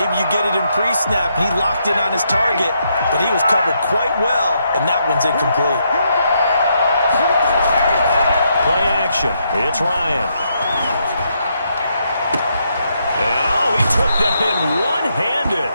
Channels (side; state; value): both; inverted; correlation -0.77